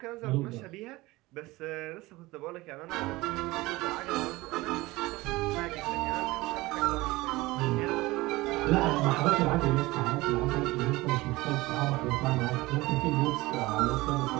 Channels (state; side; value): quieter; left; 20.3 dB